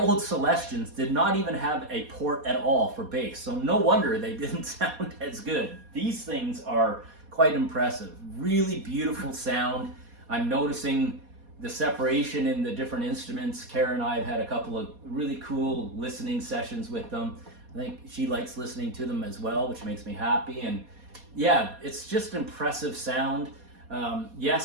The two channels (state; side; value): late; left; 4.2 ms